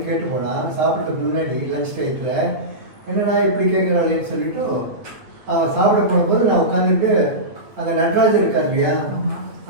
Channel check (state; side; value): late; left; 8.7 ms